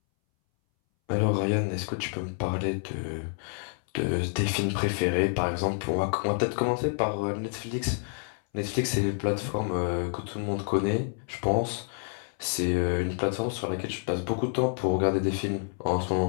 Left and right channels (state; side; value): silent; right; 59 dB below the other